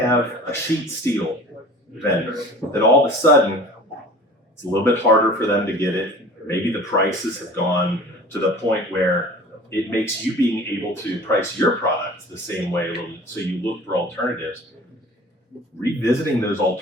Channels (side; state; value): both; normal; correlation 0.43